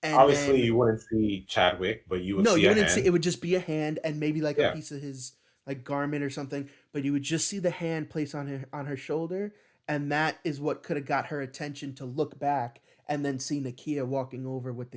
and Obviously, then you wouldn't see Chadwick, but you would no, see you a wouldn't see hand. it would just be a hand and maybe like a Yeah, piece of his like garment or something, but you would just see the hand placed on her shoulder, and that is what could have got her attention to look back and then see Nakia walking over with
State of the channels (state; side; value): identical; both; correlation 1.00